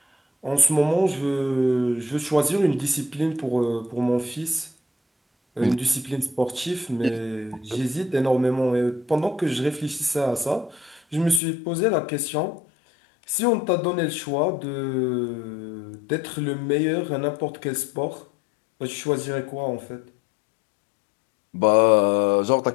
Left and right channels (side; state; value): right; drops out; at 11.4 s